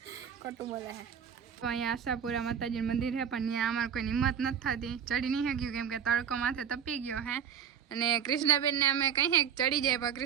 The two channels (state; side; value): quieter; left; 8.2 dB